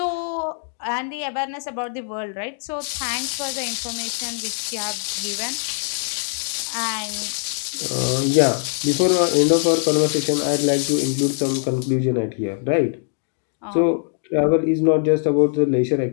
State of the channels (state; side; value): silent; right; 64 dB below the other